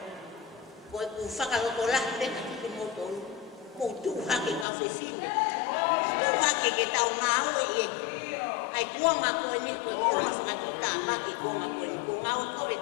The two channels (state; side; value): drops out; right; at 4.7 s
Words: Ko e ku whakaroto la pe ka ki motonu. Ko tu hake ka whewhine. Tu hake ke tau ngau e e. Ai kuanga ko e ni ko e kuanga whakatuta maki kuanga ko e ni. Ko ngau ko e